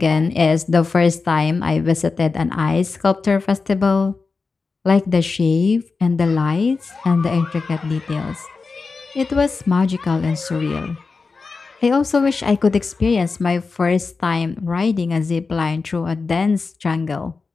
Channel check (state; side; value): quieter; right; 4.4 dB